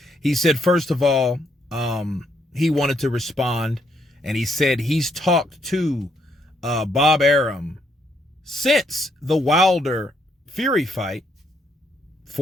He said, first of all, he wanted to respond, and he said he's talked to Bob Arum since the Wilder Fury fight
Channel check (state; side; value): normal; both; correlation 0.74